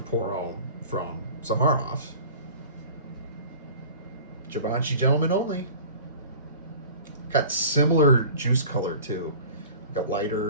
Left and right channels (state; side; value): inverted; both; correlation -0.42